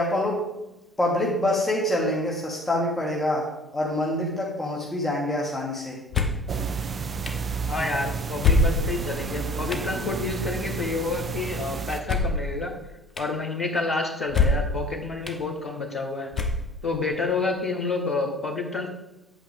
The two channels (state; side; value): normal; both; correlation 0.49